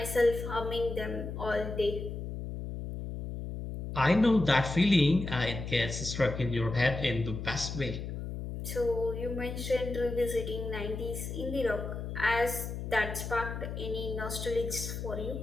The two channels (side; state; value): left; noise; hum, 6 dB below the sound